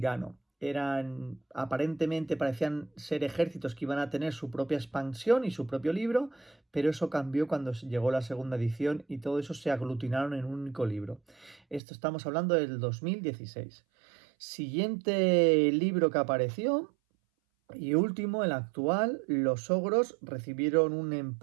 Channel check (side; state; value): left; drops out; at 11.8 s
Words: Aparentemente parecían ser ejércitos que iban a tener su propia expansión y su propio libro, pero eso cambió cuando llegó la segunda edición y todo eso se aglutinaron en un único libro. Esto estamos hablando del 2016. Siguiente libro que apareció y último, el actual, los ogros recibieron un